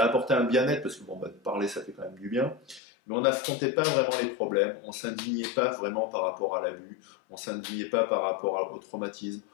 apportait un bien-être, parce que bon, bah, parler ça fait quand même du bien, mais on n'affrontait pas vraiment les problèmes, on s'indignait pas vraiment par rapport à l'abus, on s'indignait pas par rapport au traumatisme,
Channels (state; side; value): drops out; right; at 2.8 s